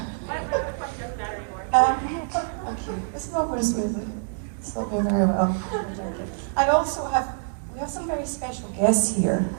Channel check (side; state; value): left; silent; digital silence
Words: Okay, this is not going smoothly. It's not going very well. We have some very special guests here.